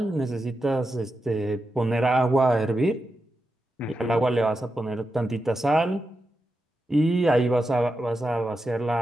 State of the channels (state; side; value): normal; both; correlation 0.88